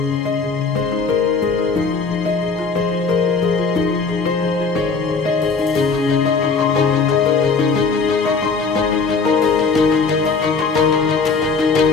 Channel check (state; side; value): quieter; right; 4.6 dB